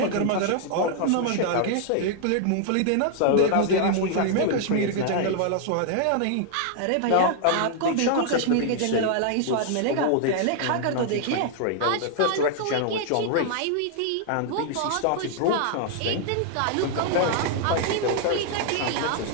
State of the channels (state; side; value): different; both; correlation 0.00